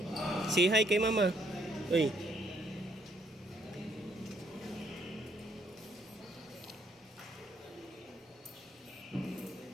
say hi kay mama. Uy.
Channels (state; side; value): normal; both; correlation 0.68